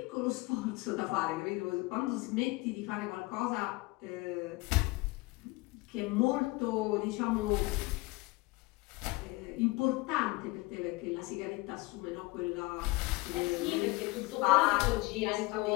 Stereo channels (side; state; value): right; quieter; 23.1 dB